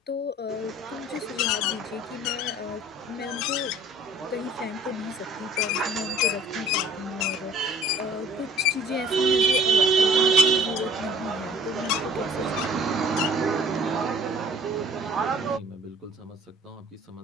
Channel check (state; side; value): normal; both; correlation 0.51